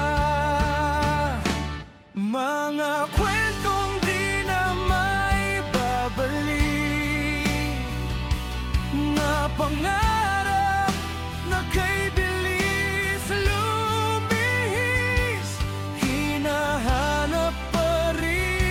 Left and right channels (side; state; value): both; identical; correlation 1.00